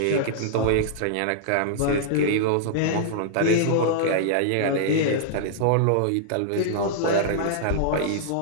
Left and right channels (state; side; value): different; both; correlation -0.02